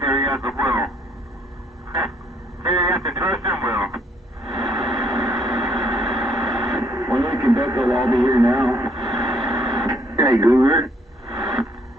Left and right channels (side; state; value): both; normal; correlation 0.66